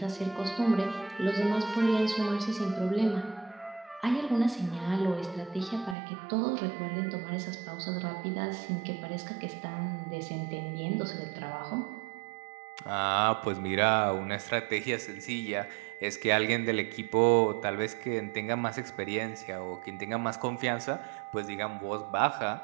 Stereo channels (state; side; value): drops out; left; at 6.0 s